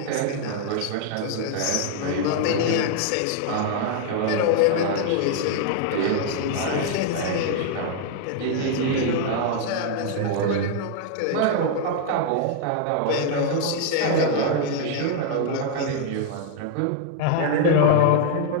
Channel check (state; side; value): different; both; correlation 0.00